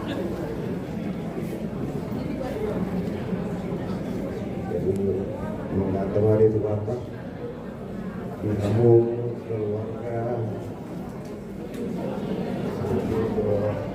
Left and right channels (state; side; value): identical; both; correlation 1.00